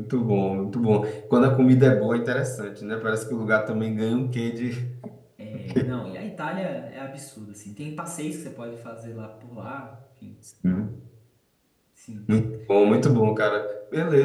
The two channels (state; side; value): identical; both; correlation 1.00